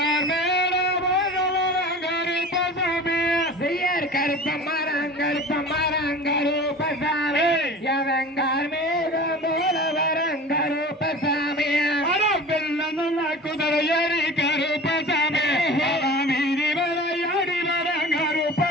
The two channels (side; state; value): both; normal; correlation 0.38